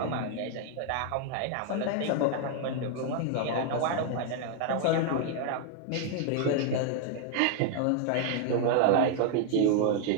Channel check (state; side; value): different; both; correlation 0.00